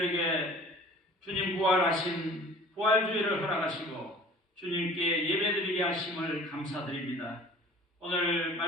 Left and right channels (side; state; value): both; normal; correlation 0.46